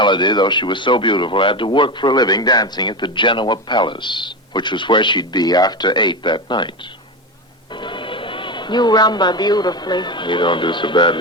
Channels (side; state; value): both; normal; correlation 0.19